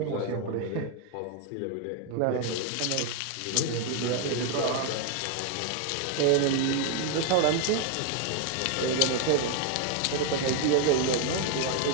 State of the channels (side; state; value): both; different; correlation 0.00